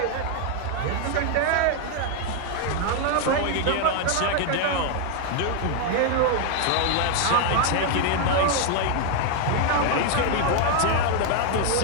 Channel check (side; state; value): both; different; correlation 0.01